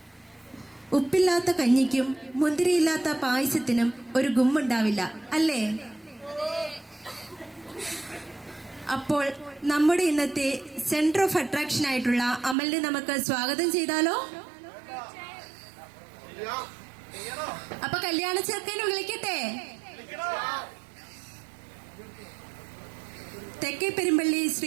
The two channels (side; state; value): left; drops out; at 12.6 s